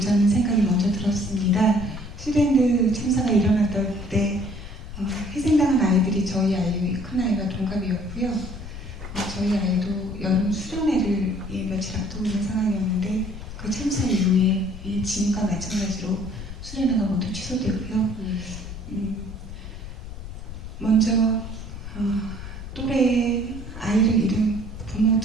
생각이 먼저 들었습니다. 슈랜드 참사가 일어났던 때 희생당한 아이들이 저희 아이의 큰아이와 동갑이었고요. 저희 아이도 여름 수련회를 며칠 앞두고 있는 상황이었는데 그 참사 이후에 지금과 마찬가지로 수련회가 모두 취소되고요. 먼저 또래의 아이를 잃은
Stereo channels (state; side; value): noise; left; rumble, 10 dB below the sound